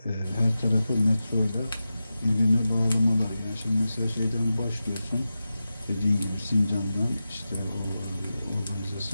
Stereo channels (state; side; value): inverted; both; correlation -0.93